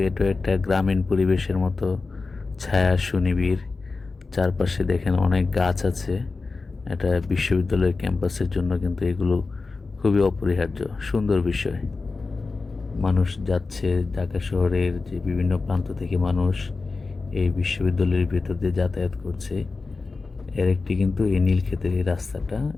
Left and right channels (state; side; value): quieter; right; 4.0 dB